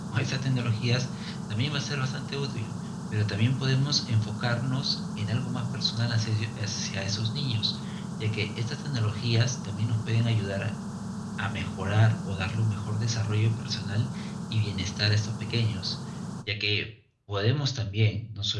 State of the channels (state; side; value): identical; both; correlation 1.00